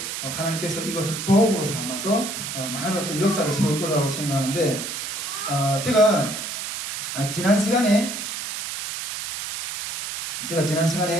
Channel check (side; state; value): right; noise; hiss, 6 dB below the sound